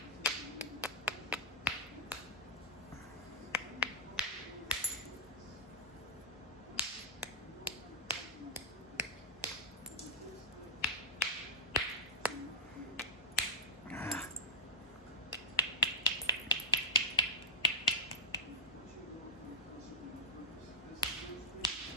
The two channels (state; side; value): normal; both; correlation -0.10